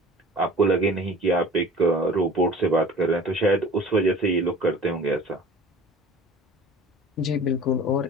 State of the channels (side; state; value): both; normal; correlation 0.44